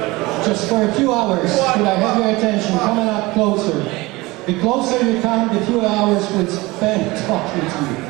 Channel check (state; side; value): quieter; left; 21.6 dB